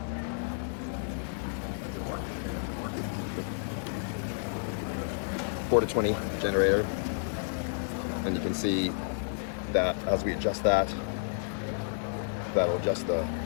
To 20 generator, and you can see that as we adjust that, that'll adjust the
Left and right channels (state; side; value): silent; right; digital silence